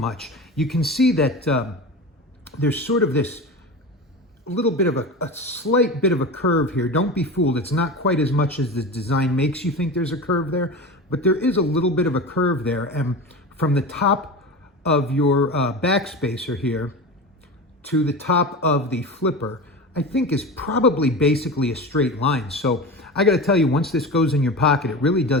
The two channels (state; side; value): normal; both; correlation 0.28